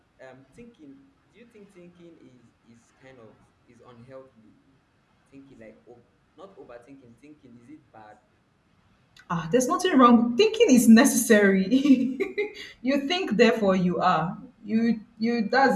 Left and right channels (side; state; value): both; identical; correlation 1.00